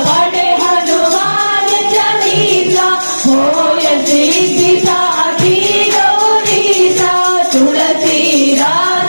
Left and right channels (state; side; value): inverted; both; correlation -1.00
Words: पढ़े हनुमान चालीसा, होय सिद्धि साखी गौरीसा।